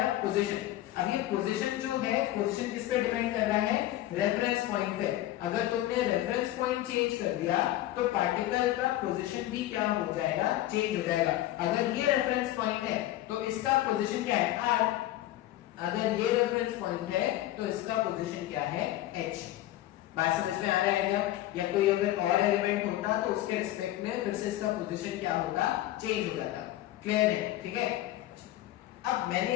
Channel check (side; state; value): right; quieter; 14.7 dB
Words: पोजीशन। अब ये पोजीशन जो है, पोजीशन किस पे डिपेंड कर रहा है, रेफरेंस पॉइंट पे। अगर तुमने रेफरेंस पॉइंट चेंज कर दिया तो पार्टिकल का पोजीशन भी क्या हो जाएगा, चेंज हो जाएगा। अगर ये रेफरेंस पॉइंट है तो इसका पोजीशन क्या है, r, अगर ये रेफरेंस पॉइंट है तो इसका पोजीशन क्या है, h। बात समझ में आ रहा है क्या? या कोई अगर और एलिमेंट होता तो उसके रिस्पेक्ट में फिर से इसका पोजीशन क्या होता, चेंज हो जाता। क्लियर है? ठीक है। अब मैंने